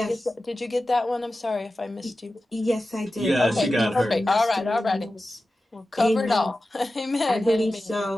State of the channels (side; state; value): both; normal; correlation 0.94